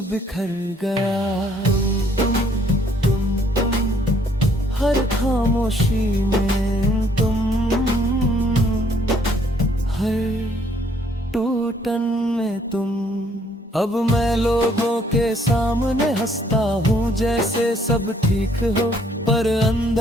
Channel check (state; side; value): normal; both; correlation 0.65